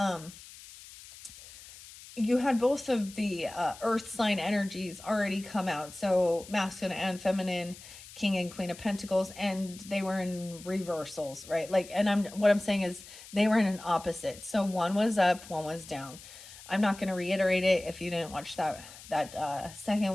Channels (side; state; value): left; noise; hiss, 17 dB below the sound